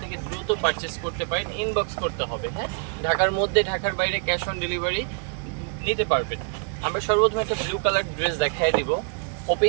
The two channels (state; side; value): quieter; left; 38.0 dB